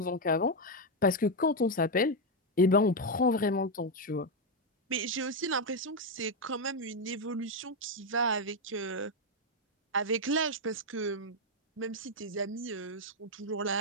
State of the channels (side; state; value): both; normal; correlation 0.04